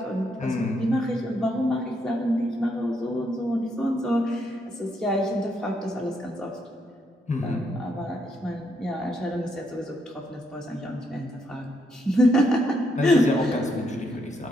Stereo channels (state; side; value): normal; both; correlation 0.76